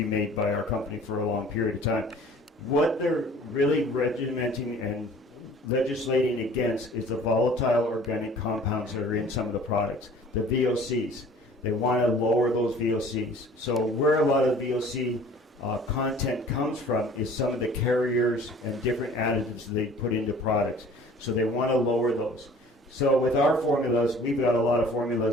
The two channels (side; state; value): both; normal; correlation 0.49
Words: made by our company for a long period of time. What they're really regimenting and legislating against is the volatile organic compounds that are in some of the products, the VOCs. They want to lower those VOCs. So where a lot of the VOC content comes from is some of the carriers and different additives they put into products. So they want to lower those. So with our formulas, we've got a lot of